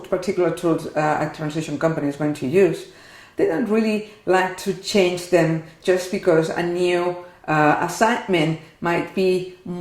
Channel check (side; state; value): both; identical; correlation 1.00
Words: particular tools a translation company is going to use, they don't really like to change them just because a new assignment might be